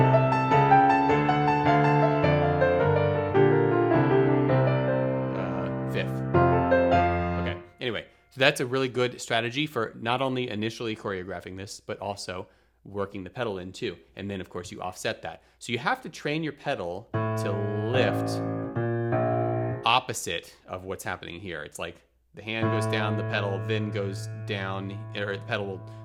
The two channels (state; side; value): identical; both; correlation 1.00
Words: Fifth. Okay, anyway, so that's a really good strategy for not only initially choreographing this, but also working the pedal in too. And then of course you offset that. So you have to train your pedal to lift opposite of what's happening here. It's like the hand goes down, the pedal then goes down, or the pedal will